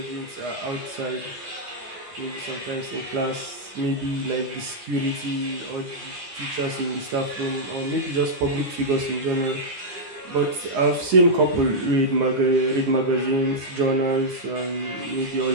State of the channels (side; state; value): left; late; 9.8 ms